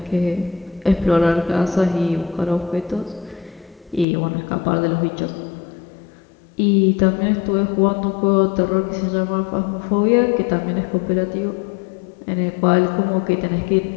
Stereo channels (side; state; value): right; drops out; at 4.0 s